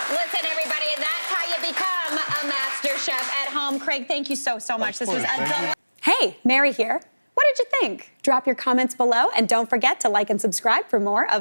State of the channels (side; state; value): both; inverted; correlation -1.00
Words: Listen, everybody, that's how you become a master chef at home. Craig, thank you so much. This was a delight. Hey, Mary here. What did you think? Drop your comments below, and don't forget to like and subscribe for more